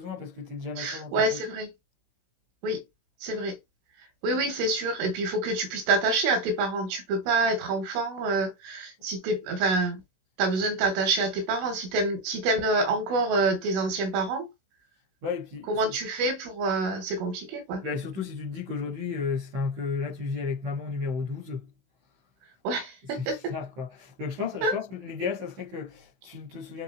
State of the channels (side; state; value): left; late; 16 ms